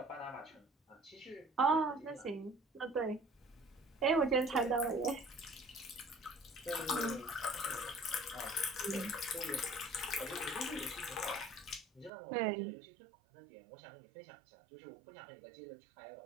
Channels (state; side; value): drops out; left; at 12.1 s